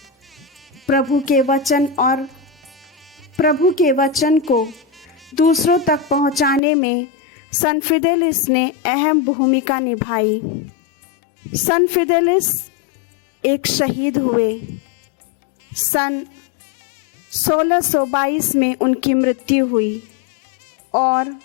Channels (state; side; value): drops out; right; at 6.6 s